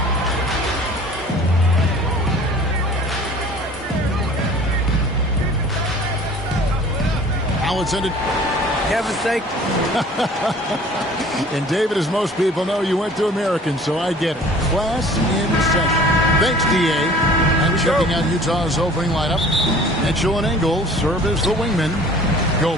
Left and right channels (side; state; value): both; normal; correlation 0.48